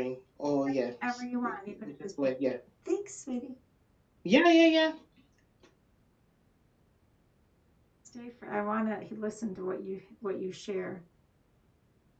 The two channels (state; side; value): identical; both; correlation 1.00